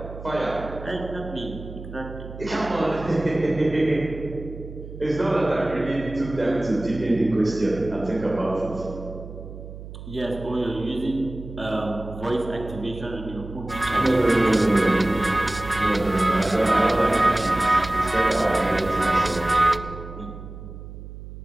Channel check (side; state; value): right; noise; hum, 13 dB below the sound